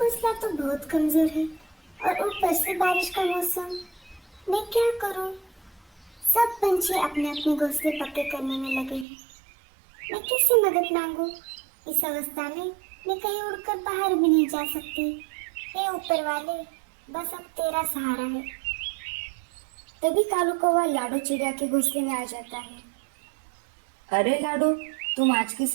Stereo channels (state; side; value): drops out; left; at 9.1 s